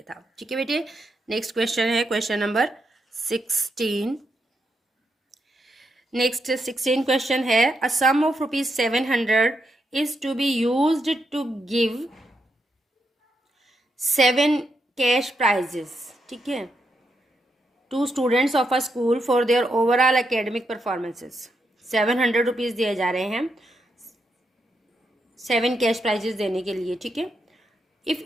था। ठीक है बेटे, नेक्स्ट क्वेश्चन है क्वेश्चन नंबर 16। नेक्स्ट 16 क्वेश्चन है, a sum of ₹700 is to be used to give 7 cash prizes. ठीक है, to students of a school for their overall academic performances. 700 rupees दिए जा रहे हैं 7 कैश प्राइजेस देने के लिए। ठीक है, if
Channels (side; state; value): both; normal; correlation 0.82